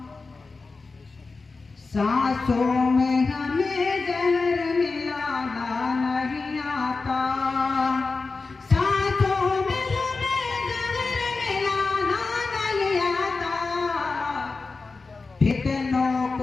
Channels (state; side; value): quieter; right; 4.0 dB